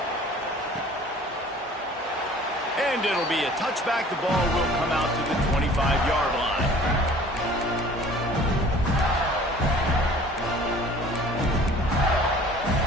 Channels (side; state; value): both; normal; correlation 0.49